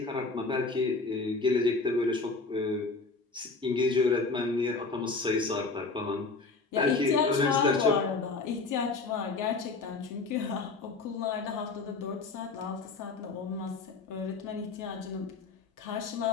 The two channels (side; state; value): right; quieter; 4.0 dB